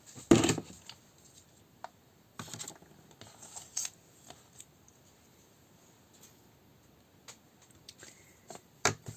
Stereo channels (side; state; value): both; identical; correlation 1.00